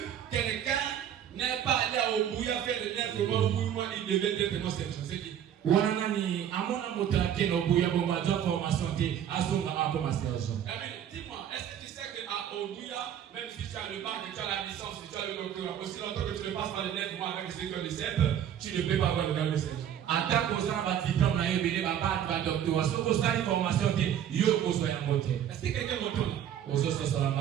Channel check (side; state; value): left; quieter; 9.8 dB